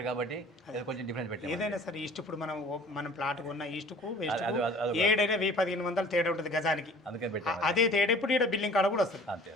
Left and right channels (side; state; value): both; normal; correlation 0.48